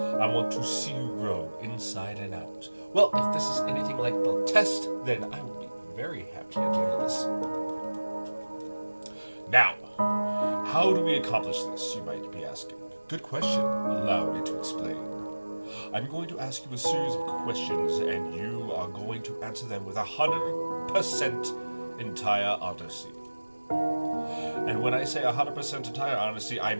want to see you grow inside and out. Well, if this is anything like the test, then I will be very happy at the end of this. Now, how do we accomplish this, you might be asking? Good question. Allow me to explain. I'm going to ask you a series of questions, and you are going to answer them with 100% entire honesty. And when I say 100% entire honesty, I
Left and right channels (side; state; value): both; inverted; correlation -1.00